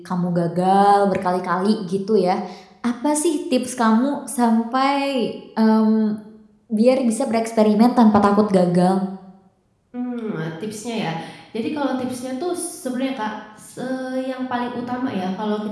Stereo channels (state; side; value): identical; both; correlation 1.00